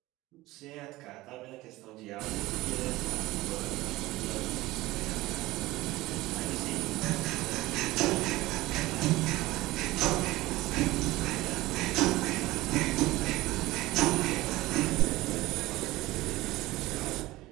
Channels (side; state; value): left; quieter; 18.7 dB